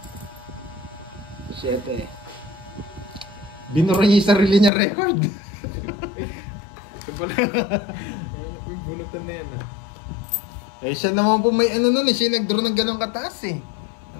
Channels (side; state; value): right; drops out; at 4.7 s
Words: 7. Binura niya yung sarili niya record. Ito pala. May bunutan na yan. Eh siya naman po may ano nun eh. Siya nag-draw ng ganong kataas eh.